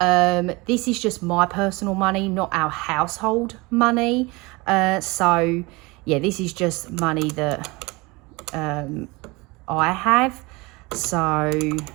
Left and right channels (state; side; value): quieter; left; 24.4 dB